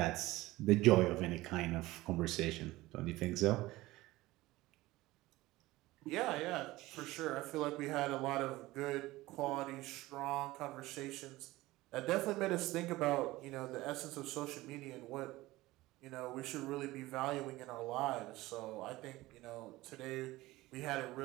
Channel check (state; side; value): quieter; left; 18.5 dB